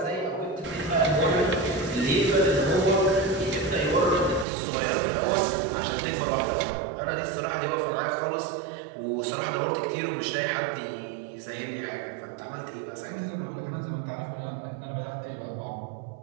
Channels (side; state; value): left; drops out; at 4.5 s